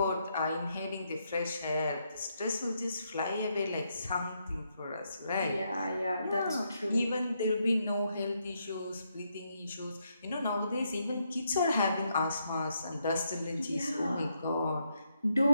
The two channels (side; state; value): both; inverted; correlation -0.78